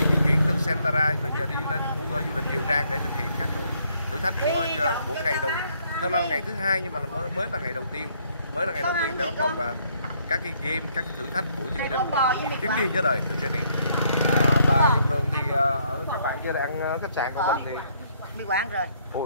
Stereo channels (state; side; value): inverted; both; correlation -0.69